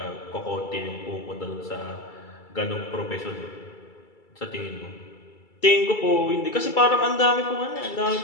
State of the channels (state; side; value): late; right; 2.3 ms